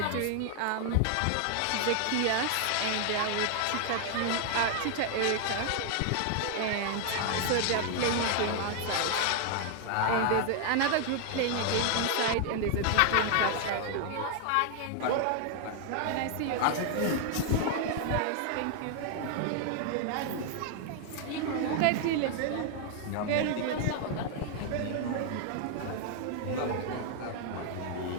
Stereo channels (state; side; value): different; both; correlation 0.00